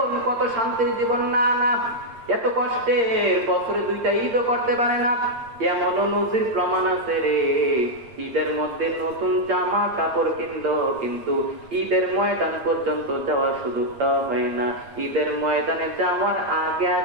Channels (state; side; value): late; left; 8.7 ms